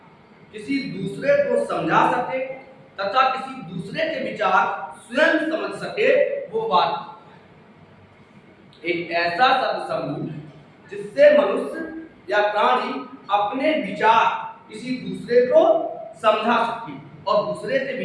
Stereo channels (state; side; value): identical; both; correlation 1.00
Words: किसी दूसरे को समझा सके तथा किसी दूसरे के विचार स्वयं समझ सके, वो वाक्य। एक ऐसा शब्द समूह जिससे मनुष्य या प्राणी अपने विचार किसी दूसरे को समझा सके और दूसरे के